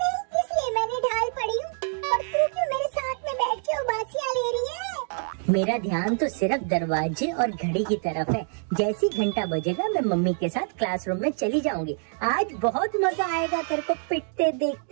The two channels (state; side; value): silent; left; 61 dB below the other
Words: नहीं, इसलिए मैंने ढाल पड़ी हूँ। और तू क्यों मेरे साथ में बैठ के उबासियाँ ले रही है? मेरा ध्यान तो सिर्फ दरवाजे और घड़ी की तरफ है। जैसी घंटा बजेगा मैं मम्मी के साथ क्लासरूम में चली जाऊंगी। आज बहुत मजा आएगा तेरे को पिटते